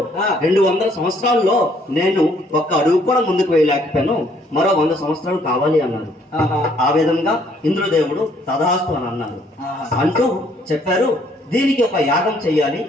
200 సంవత్సరాల్లో నేను ఒక్క అడుగు కూడా ముందుకు వేయలేకపోయాను, మరో 100 సంవత్సరాలు కావాలి అన్నారు. ఆ విధంగా ఇంద్రదేవుడు తదాస్తు అని అన్నారు. అంటూ చెప్పారు, దీనికి ఒక యాగం చెయ్యాలి,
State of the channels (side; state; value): both; normal; correlation 0.65